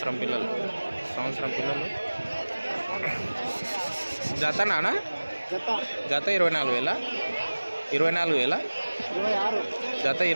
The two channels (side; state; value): both; inverted; correlation -1.00